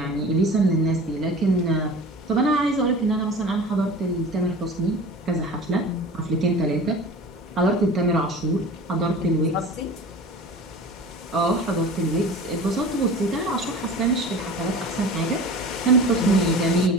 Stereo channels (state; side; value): normal; both; correlation 0.38